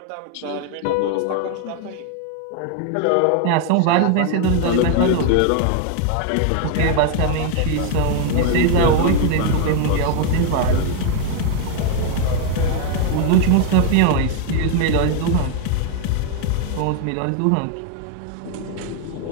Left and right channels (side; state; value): both; different; correlation 0.00